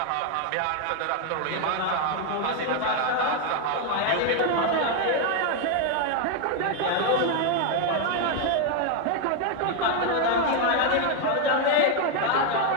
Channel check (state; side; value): different; both; correlation 0.01